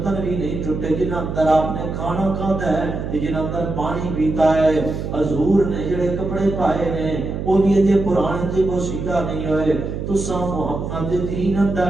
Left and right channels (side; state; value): right; noise; hum, 5 dB below the sound